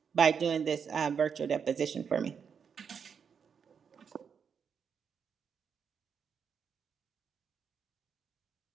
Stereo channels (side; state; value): left; quieter; 6.8 dB